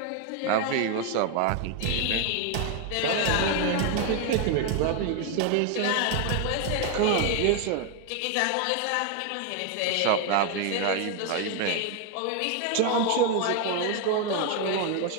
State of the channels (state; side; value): different; both; correlation 0.01